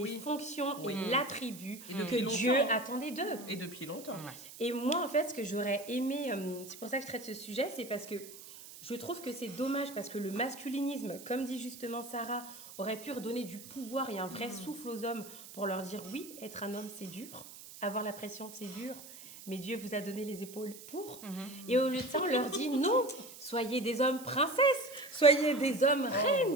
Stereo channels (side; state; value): right; noise; hiss, 15 dB below the sound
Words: fonctions et l'attribut que Dieu attendait d'eux. Et depuis longtemps. Et moi, en fait, ce que j'aurais aimé, c'est pour ça que je traite ce sujet, c'est parce que je trouve que c'est dommage parce que le masculinisme, comme dit justement Sarah, aurait pu redonner du pouvoir et un vrai souffle aux hommes pour leur dire oui, être un homme c'est dur, avoir la pression c'est dur, mais Dieu vous a donné les épaules pour. Et au lieu de ça, on leur dit non, soyez des hommes princesses, soyez des hommes